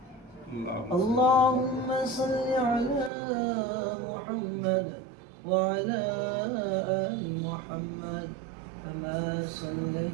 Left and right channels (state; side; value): drops out; left; at 3.1 s